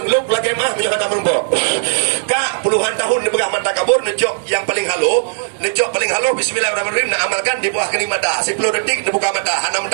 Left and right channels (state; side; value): silent; left; 68 dB below the other